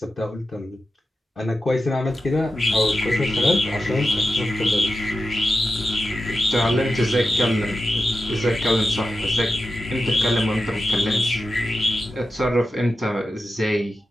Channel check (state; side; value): normal; both; correlation 0.91